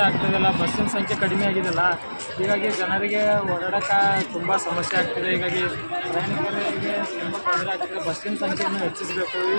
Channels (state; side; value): inverted; both; correlation -1.00